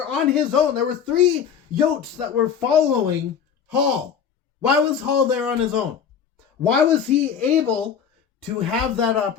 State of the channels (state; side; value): quieter; right; 7.5 dB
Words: on his own. There were 3 Yotes that were following Hall. Why was Hall there on his own? Why was he able to have that